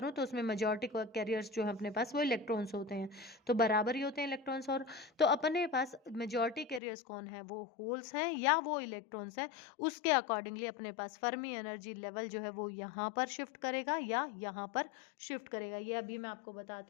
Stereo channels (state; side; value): drops out; right; at 6.8 s